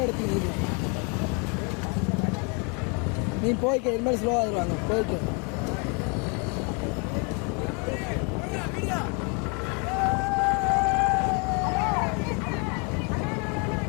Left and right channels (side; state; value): right; quieter; 34.5 dB